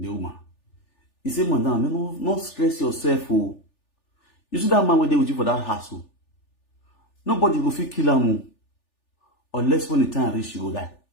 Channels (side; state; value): right; late; 3.4 ms